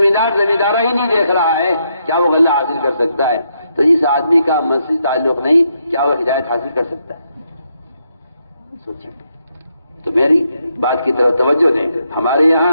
ہی نہیں دیکھ رہا ہے کیا وہ غلہ حاصل کر سکتا ہے؟ تو اس آدمی کا مسجد تعلق نہیں، کیا وہ ہدایت حاصل کر سکتا ہے؟ سوچیں۔ تو میری بات کی طرف توجہ دیں۔ ہمارے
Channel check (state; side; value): inverted; both; correlation -0.79